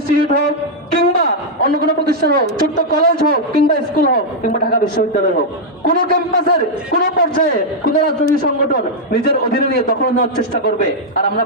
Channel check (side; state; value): both; normal; correlation -0.04